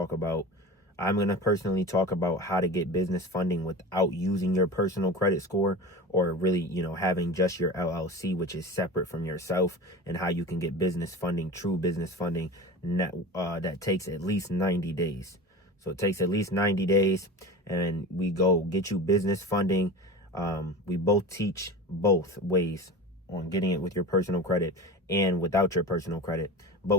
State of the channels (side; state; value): both; normal; correlation 0.31